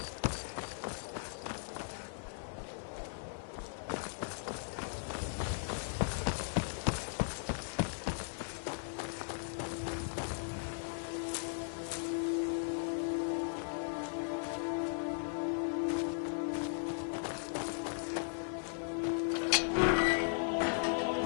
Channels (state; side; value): silent; right; digital silence